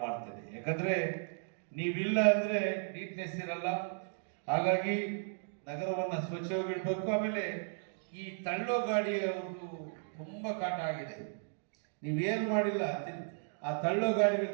ಮಾಡ್ತೇನೆ. ಯಾಕಂದ್ರೆ ನೀವಿಲ್ಲ ಅಂದ್ರೆ ನೀಟ್ನೆಸ್ ಇರಲ್ಲ. ಹಾಗಾಗಿ ನಗರವನ್ನ ಸ್ವಚ್ಛವಾಗಿಡ್ಬೇಕು. ಆಮೇಲೆ ಈ ತಳ್ಳೋ ಗಾಡಿಯ ಒಂದು ತುಂಬಾ ಕಾಟ ಆಗಿದೆ. ನೀವೇನು ಮಾಡಿಲ್ಲ, ಆ ತಳ್ಳೋ ಗಾಡಿಗಳು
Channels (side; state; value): left; silent; digital silence